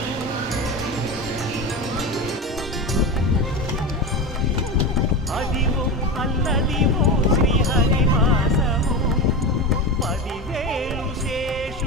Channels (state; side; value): normal; both; correlation 0.22